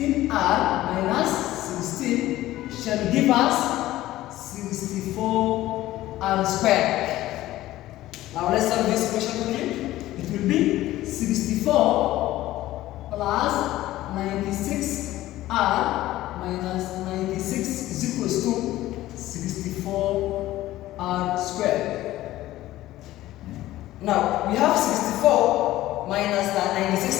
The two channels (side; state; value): right; quieter; 15.6 dB